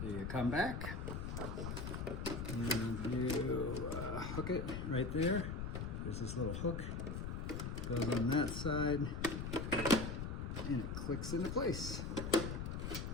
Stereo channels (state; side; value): noise; left; rumble, 4 dB below the sound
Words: you come back and you hook it right there. There's this little hook, goes on that side, and it clicks into place.